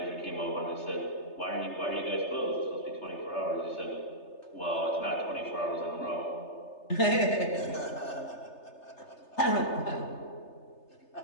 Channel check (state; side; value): late; right; 3.3 ms